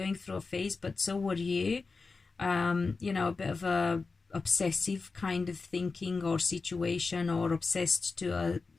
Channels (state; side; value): quieter; right; 4.2 dB